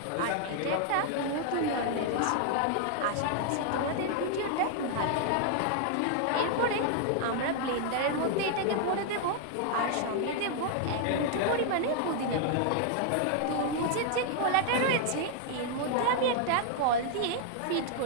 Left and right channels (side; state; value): both; different; correlation 0.00